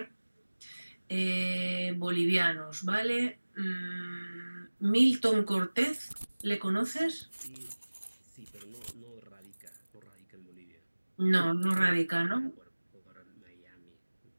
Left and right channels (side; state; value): both; inverted; correlation -1.00